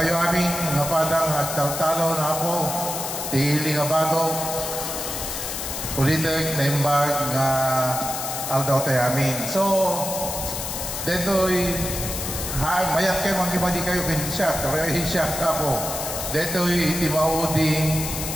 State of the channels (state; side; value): noise; left; hiss, 5 dB below the sound